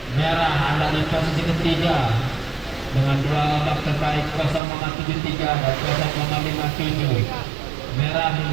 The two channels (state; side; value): drops out; left; at 4.6 s